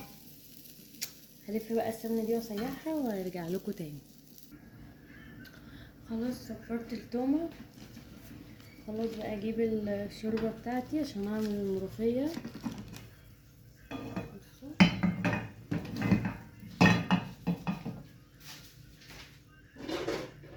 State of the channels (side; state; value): both; identical; correlation 1.00